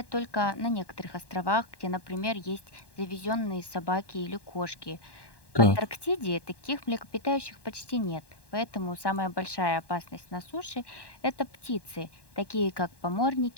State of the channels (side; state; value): right; late; 1.1 ms